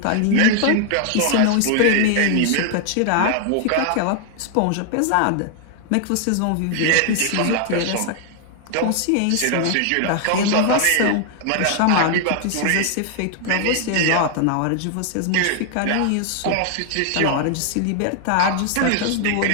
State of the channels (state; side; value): different; both; correlation 0.00